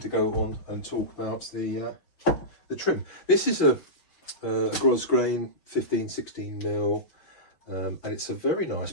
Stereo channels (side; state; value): right; late; 5.9 ms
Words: go on and talk about the trim. This is a gros grain 15-16 mil, and it's a very nice